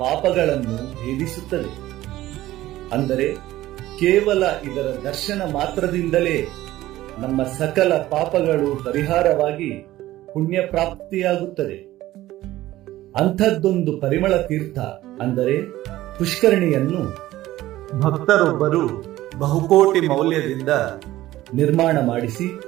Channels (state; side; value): quieter; left; 15.6 dB